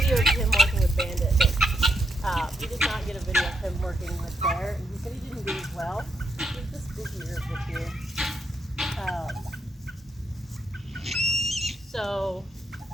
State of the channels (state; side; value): normal; both; correlation 0.80